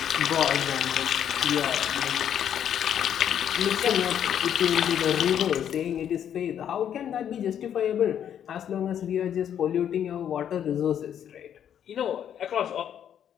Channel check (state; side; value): quieter; right; 9.4 dB